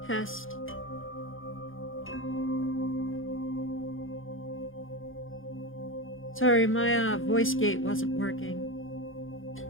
test. Sorry, my voice gate wasn't working.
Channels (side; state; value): right; late; 0.58 ms